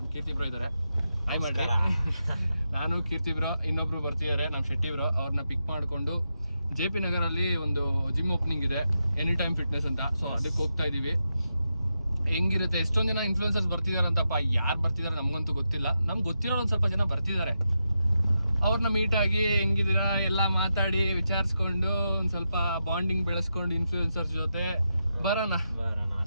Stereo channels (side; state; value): both; inverted; correlation -0.86